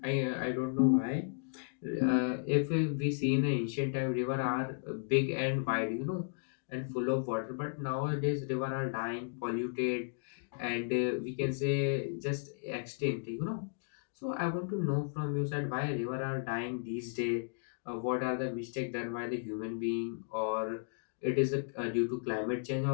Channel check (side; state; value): right; silent; digital silence